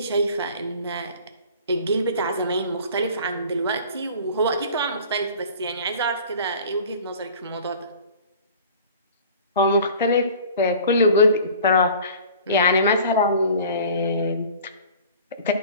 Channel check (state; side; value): inverted; both; correlation -0.45